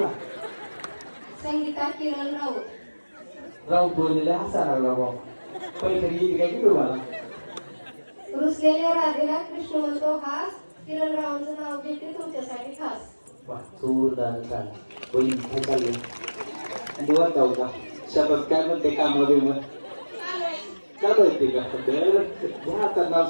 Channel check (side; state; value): both; inverted; correlation -1.00